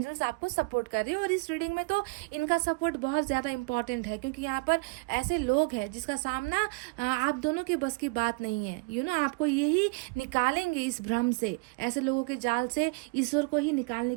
आपको सपोर्ट कर रहे हैं। और इस रीडिंग में तो इनका सपोर्ट बहुत ज़्यादा इंपॉर्टेंट है, क्योंकि यहाँ पर ऐसे लोग हैं जिसका सामना आप दोनों के बस की बात नहीं है। आपको यही निकालेंगे इस भ्रम से, ऐसे लोगों के जाल से ईश्वर को ही निकालने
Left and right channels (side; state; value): left; quieter; 28.5 dB